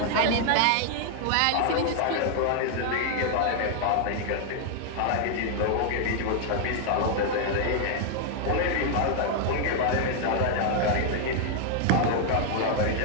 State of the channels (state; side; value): different; both; correlation 0.00